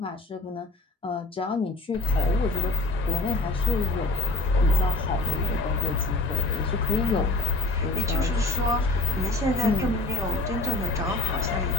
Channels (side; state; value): right; quieter; 3.2 dB